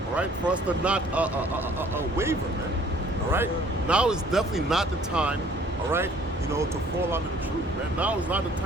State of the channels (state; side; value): normal; both; correlation 0.56